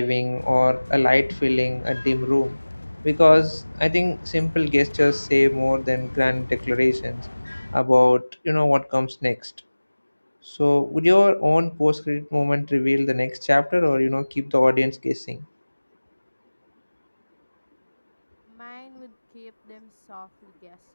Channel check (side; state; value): both; inverted; correlation -1.00